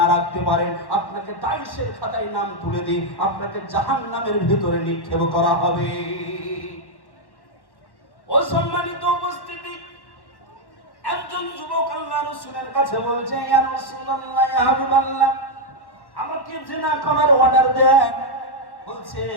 রাখতে পারেন, আপনাকে দায়িশের খাতায় নাম তুলে দিই, আপনাকে জাহান্নামের ভিতরে নিক্ষেপ করা হবে। অসম্মানিত উপস্থিতি, একজন যুবক আল্লাহ রাসূলের কাছে বলছে, ইয়া রাসূলুল্লাহ, ইয়া হাবিবাল্লাহ, আমাকে জিনা করার অর্ডার দেন। বলছে,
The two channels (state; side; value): late; right; 1.1 ms